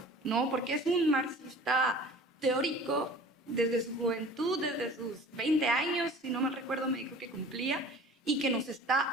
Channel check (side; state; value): both; normal; correlation 0.44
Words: ¿no? Porque es un marxista teórico desde su juventud, desde sus 20 años, si no me recuerdo, me dijo que cumplía, y que nos